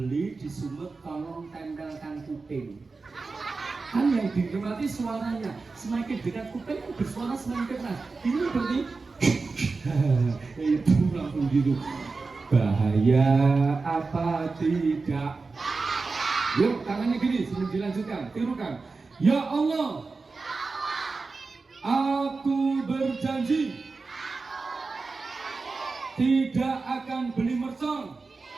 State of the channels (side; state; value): left; quieter; 4.1 dB